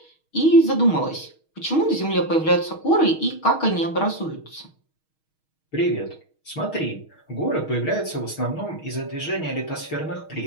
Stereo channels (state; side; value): late; right; 6.4 ms